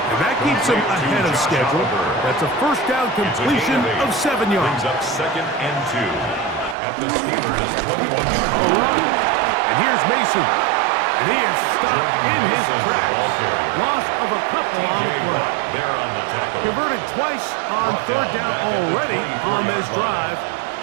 And that keeps him ahead of schedule. That's a 1st down completion of 7 yards. Brings up 2nd and 2. At the Steelers' 21-yard All right. And here's Mason. And he is stopped in his tracks. Loss of a couple on the play. There on the tackle. Converted twice on 3rd down already on this drive.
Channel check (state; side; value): drops out; left; at 6.8 s